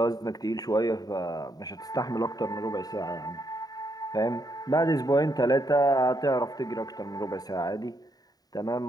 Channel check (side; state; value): right; late; 0.18 ms